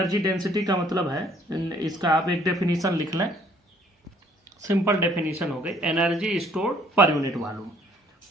density का मतलब है, इसका आप एक डेफिनेशन लिख लें, सिंपल डेफिनेशन हो गई, energy stored per unit volume.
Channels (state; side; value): normal; both; correlation 0.61